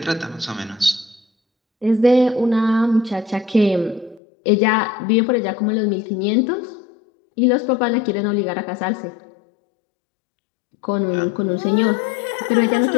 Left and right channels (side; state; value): right; drops out; at 4.2 s